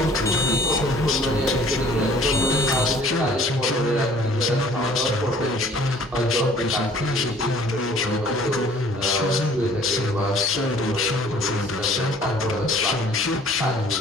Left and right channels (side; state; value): both; normal; correlation 0.54